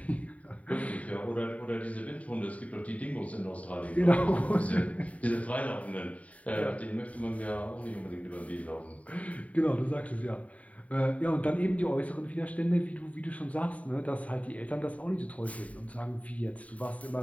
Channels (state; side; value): late; right; 0.068 ms